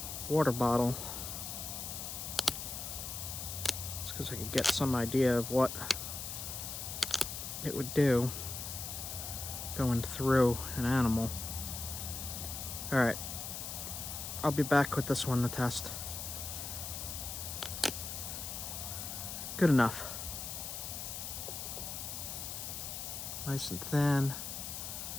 water bottle. It's because I could get some idea of what it would do going through an animal. All right, I'll be back with this one to test. Good enough. Nice and thin,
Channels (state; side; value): noise; left; hiss, 6 dB below the sound